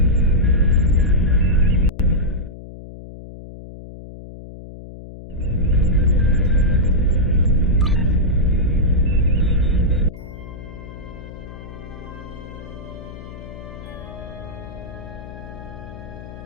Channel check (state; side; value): noise; left; hum, 14 dB below the sound